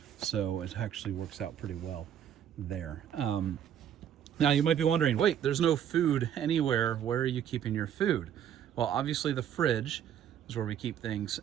So it actually works out pretty well there. Now you might be wondering, wait, there's no food anywhere. Where are you keeping your food? Well, obviously the fridge is where we keep things.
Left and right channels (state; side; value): quieter; left; 9.6 dB